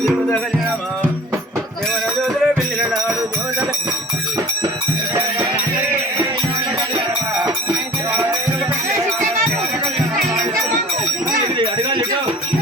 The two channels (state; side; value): normal; both; correlation 0.45